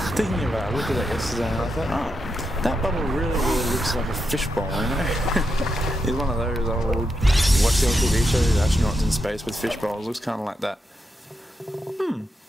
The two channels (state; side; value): normal; both; correlation 0.85